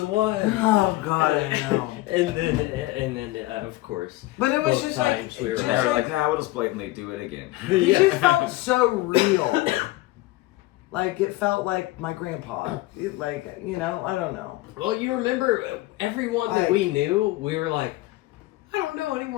one. Oh God, I know. and then of course. But it was both just like, times we were just And they were like like, nah, we'll just blatantly do it again. he Yeah. just felt so real. Like it felt like my grandpa. Like, I don't know. Well, you remember everyone that Like- we knew, we were like, I don't know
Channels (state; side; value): quieter; right; 18.7 dB